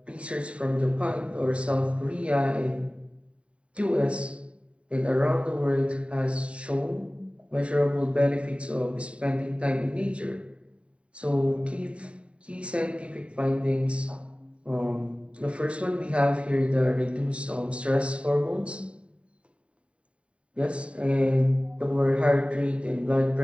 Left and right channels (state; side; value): late; left; 0.061 ms